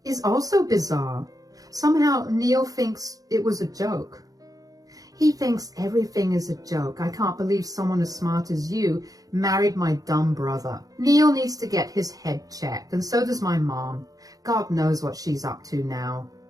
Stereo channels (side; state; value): left; late; 0.17 ms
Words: is also bizarre. Somehow Neil thinks it was a joke. He thinks everything is a joke. I can't believe someone as smart as you married my dumb brother. Neil needs to get his head checked, and so does my mom. God knows what she's up to now.